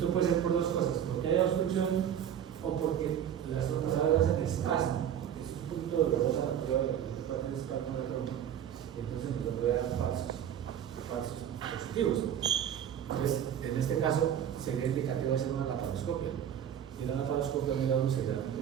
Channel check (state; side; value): quieter; left; 9.6 dB